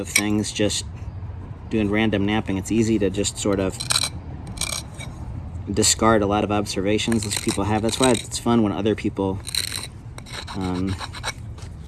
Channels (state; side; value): identical; both; correlation 1.00